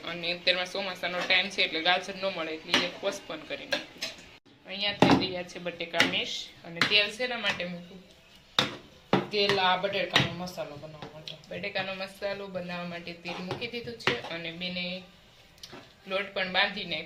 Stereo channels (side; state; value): both; identical; correlation 1.00